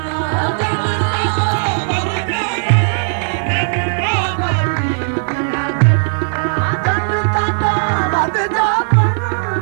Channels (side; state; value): left; silent; 65 dB below the other